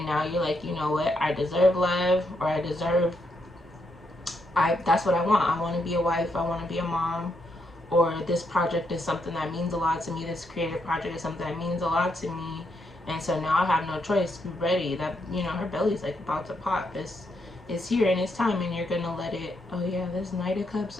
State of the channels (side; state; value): both; normal; correlation 0.79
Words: now you're like, you know what, I deserve love, or I deserve, that's what I want. I want to be a wife, I want to be a mom, or this project is something that means a lot to me. This creative project is something that means a lot to me. And so now I have no choice. Be ready. That, you know, her belly's like about to pop. It's here, and it's time, and you're gonna let it. Oh yeah, there's Knight of